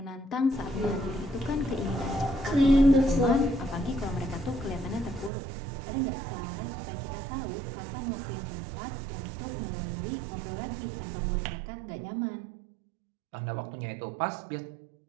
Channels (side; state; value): left; drops out; at 5.3 s